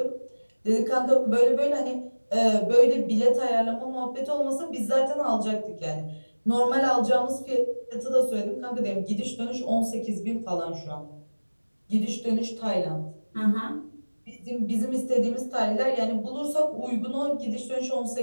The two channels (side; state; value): both; inverted; correlation -1.00